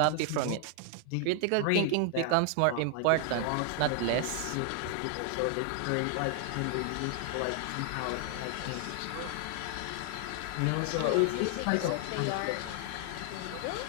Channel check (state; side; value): different; both; correlation 0.00